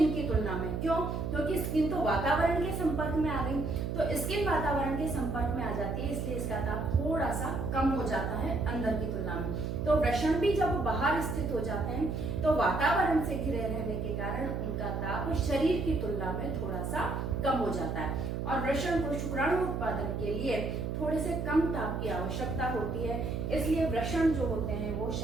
की तुलना में। क्यों? क्योंकि स्किन तो वातावरण के संपर्क में आ गई, तो स्किन वातावरण के संपर्क में आ जाती है, इसलिए इसका ताप थोड़ा सा कम हो जाता है अंदर की तुलना में। तो वृषण भी जब बाहर स्थित हो जाते हैं तो वातावरण से घिरे रहने के कारण उनका ताप शरीर की तुलना में थोड़ा सा कम हो जाता है। और वृषण को शुक्राणु उत्पादन के लिए थोड़े से कम ताप की आवश्यकता होती है, इसलिए वृषण जो होते हैं वो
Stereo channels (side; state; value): right; noise; hum, 3 dB below the sound